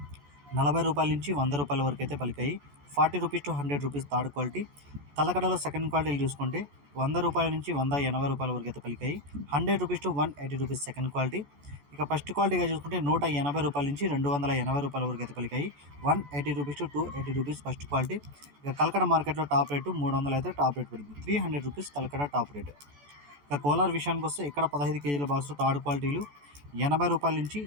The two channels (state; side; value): late; left; 14 ms